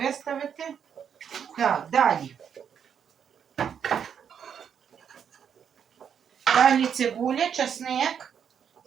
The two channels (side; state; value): left; quieter; 7.9 dB